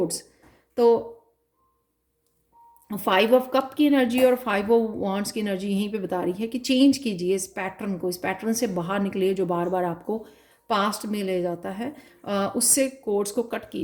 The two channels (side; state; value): both; identical; correlation 1.00